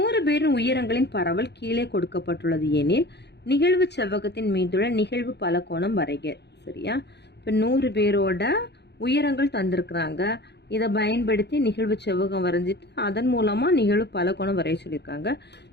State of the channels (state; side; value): late; right; 0.49 ms